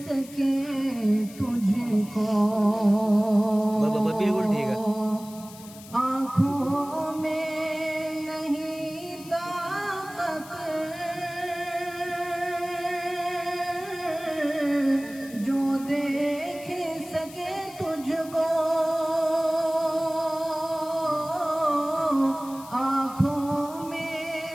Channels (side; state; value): left; noise; hiss, 18 dB below the sound